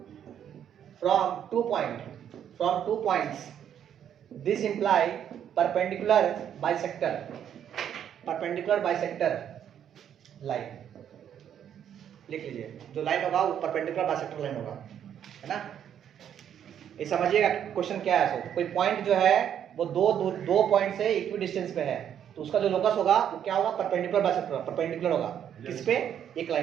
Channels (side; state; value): left; quieter; 9.4 dB